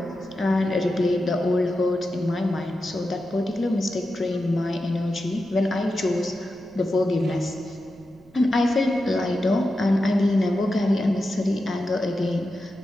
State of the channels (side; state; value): right; noise; rumble, 27 dB below the sound